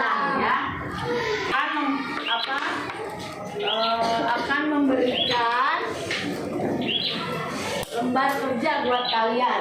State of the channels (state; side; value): identical; both; correlation 1.00